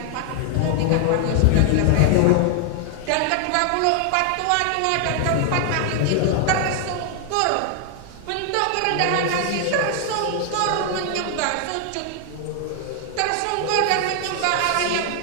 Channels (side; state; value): both; different; correlation 0.00